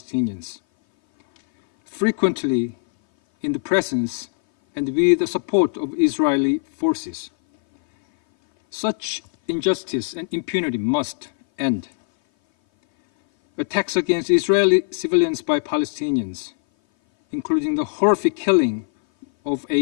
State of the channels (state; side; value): silent; right; 59 dB below the other